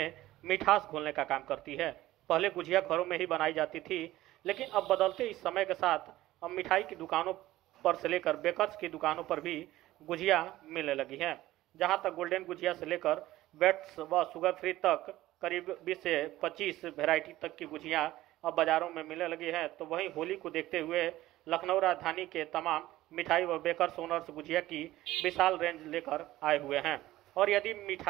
मिठास घोलने का काम करती है। पहले गुझिया घरों में ही बनाई जाती थी, लेकिन अब बदलते इस समय के साथ अब मिठाई की दुकानों पर से लेकर बेकर्स की दुकानों पर भी गुझिया मिलने लगी हैं। जहां तक गोल्डन गुझिया से लेकर बेट्स व शुगर फ्री तक करीब 20 से 25 वैरायटी तक की गुझिया अब बाजारों में मिलने लगी है। तो वहीं होली को देखते हुए लखनऊ राजधानी के तमाम मिठाई व बेकर्स ओनर्स गुझिया की विशाल रेंज लेकर आए हुए हैं। और यदि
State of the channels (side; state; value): left; quieter; 16.0 dB